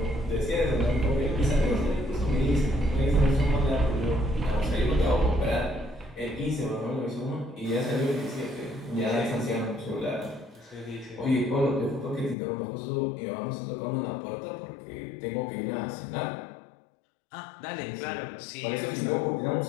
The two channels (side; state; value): right; drops out; at 12.4 s